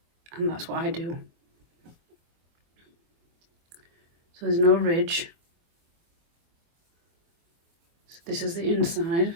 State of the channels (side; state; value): left; late; 24 ms